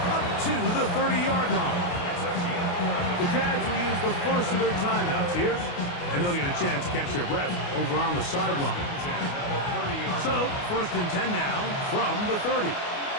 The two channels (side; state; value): right; late; 28 ms